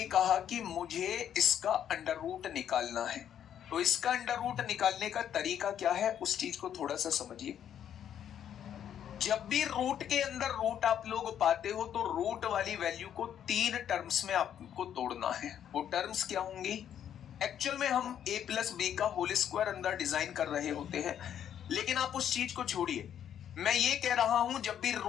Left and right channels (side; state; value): right; quieter; 9.7 dB